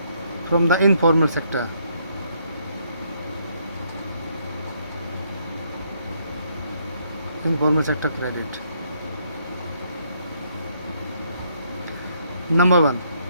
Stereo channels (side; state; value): both; inverted; correlation -0.71